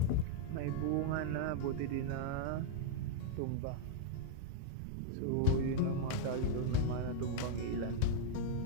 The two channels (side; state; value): both; different; correlation -0.01